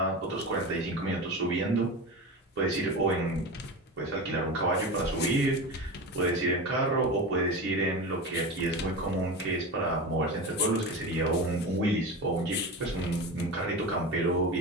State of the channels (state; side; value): normal; both; correlation 0.25